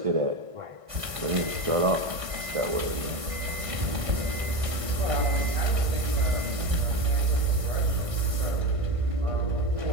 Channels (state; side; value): late; left; 1.5 ms